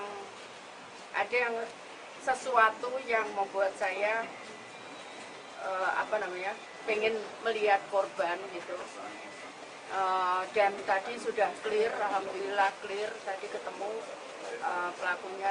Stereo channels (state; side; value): identical; both; correlation 1.00